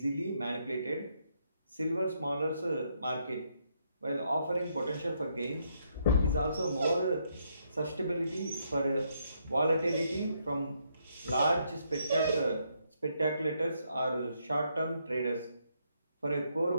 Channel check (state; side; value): inverted; both; correlation -0.75